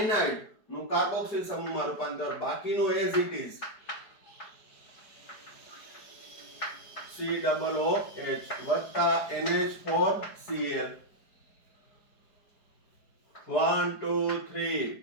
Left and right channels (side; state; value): right; late; 4.8 ms